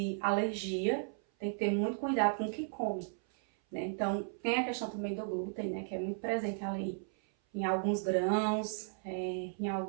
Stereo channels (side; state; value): left; silent; 54 dB below the other